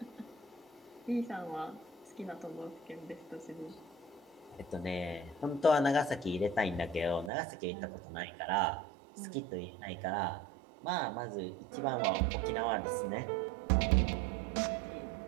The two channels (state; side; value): drops out; left; at 7.3 s